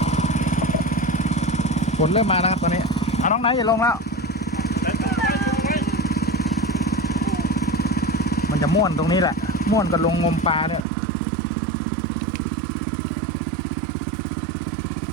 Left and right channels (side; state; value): left; drops out; at 10.9 s